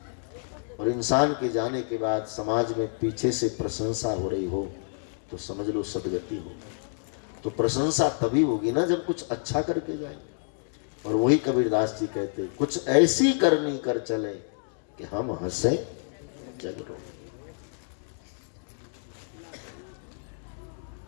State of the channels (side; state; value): right; silent; digital silence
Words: और इंसान के जाने के बाद समाज में पीछे से प्रशंसा हो रही हो तो समझ लो सदगति हो। तो प्रशंसा तभी होगी ना जब कुछ अच्छा करके जाए। और वही कबीरदास जी कहते कुछ ऐसी करनी कर चले कि हम हंसे जग रोए।